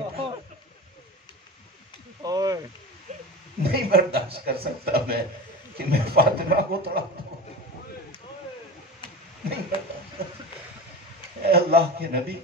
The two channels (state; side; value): normal; both; correlation 0.29